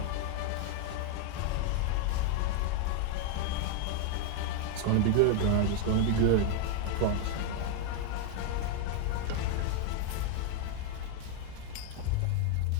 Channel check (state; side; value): different; both; correlation 0.00